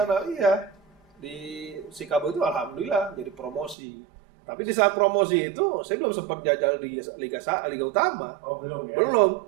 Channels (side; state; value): left; drops out; at 3.8 s